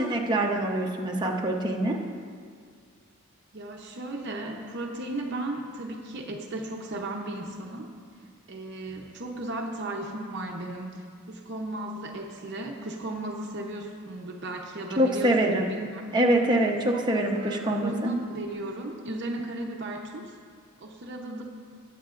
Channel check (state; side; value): normal; both; correlation 0.50